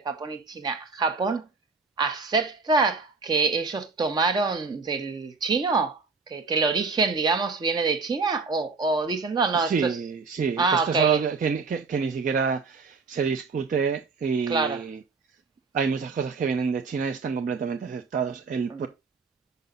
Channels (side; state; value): left; quieter; 4.4 dB